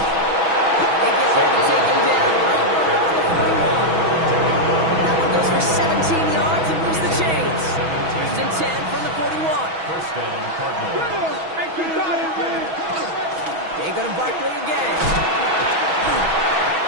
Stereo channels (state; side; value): late; left; 6.2 ms